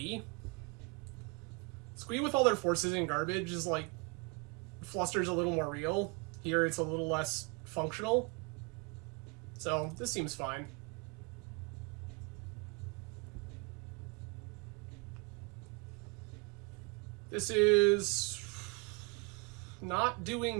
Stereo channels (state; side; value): quieter; left; 31.5 dB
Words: Squee with all their forces and garbage is like, Fluster's a little more real. Here it's a little less functional. So this seems fine. This is not